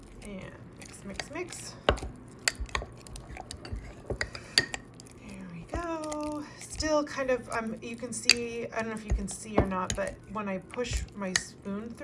And mix. There we go. Still kind of, you can see, I don't know if you can see or not, but when I push my spoon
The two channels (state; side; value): identical; both; correlation 1.00